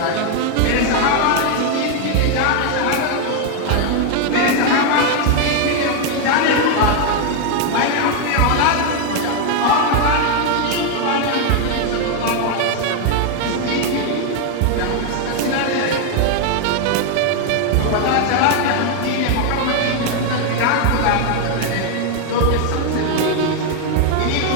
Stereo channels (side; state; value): both; different; correlation 0.01